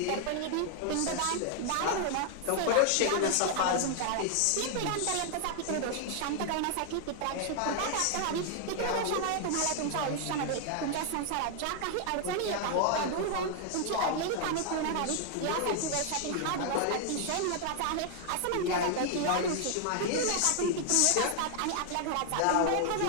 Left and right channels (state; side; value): different; both; correlation 0.00